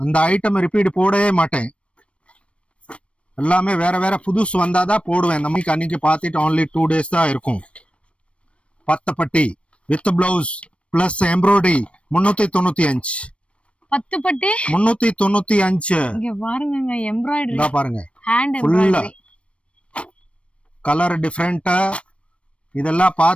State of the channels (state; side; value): late; right; 0.061 ms